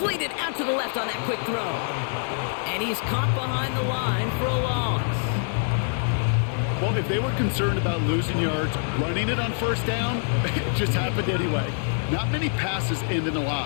out to the left on that quick throw. And he's caught behind the line for a loss. Well, if they were concerned about losing yards, running it on 1st down, it just happened anyway. Not many passes end in a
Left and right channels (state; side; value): silent; right; digital silence